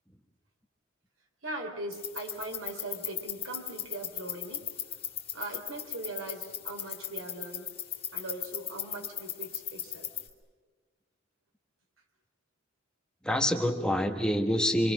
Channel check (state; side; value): normal; both; correlation 0.54